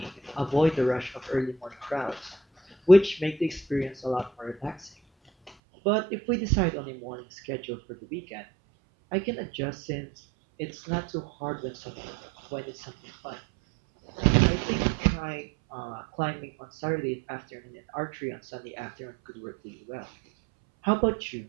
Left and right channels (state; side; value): drops out; left; at 5.5 s